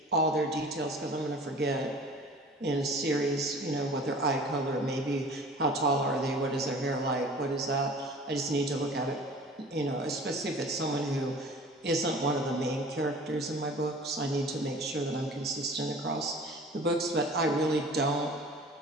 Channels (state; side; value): normal; both; correlation 0.45